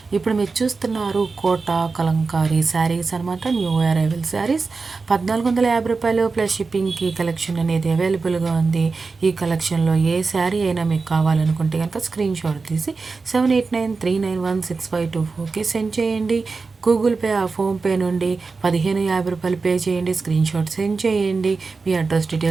ఇప్పుడు మీరు చూస్తున్నారు కోట కలంకారీ శారీస్ అనమాట. న్యూ అరైవల్ శారీస్ 1450 రూపాయలు ప్లస్ షిప్పింగ్కి కలెక్షన్ అనేది అవైలబుల్గా ఉంది. ఈ కలెక్షన్లో ఏ శారీ అయినా మీకు కావాలనుకుంటే కనుక స్క్రీన్ షాట్ తీసి 7893916524కి సెండ్ చేయండి. గూగుల్ పే ఫోన్పే నుండి 1550 రూపాయలు పే చేయండి. స్క్రీన్ షాట్ సెండ్ చేయండి. మీ అడ్రస్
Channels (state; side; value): quieter; left; 4.3 dB